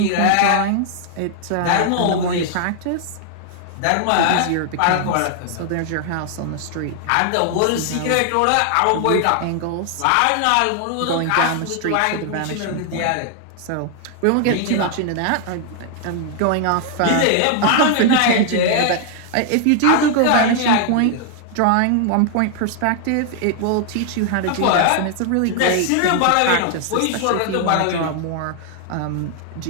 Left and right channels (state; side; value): different; both; correlation 0.00